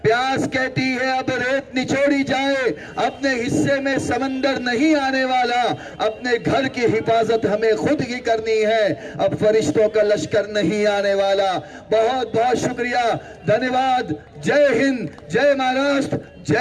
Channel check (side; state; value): both; identical; correlation 1.00